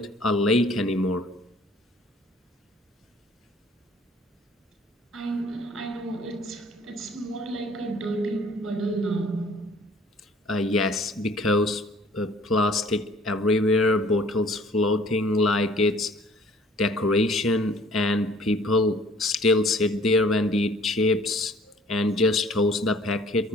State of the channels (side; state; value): both; normal; correlation 0.54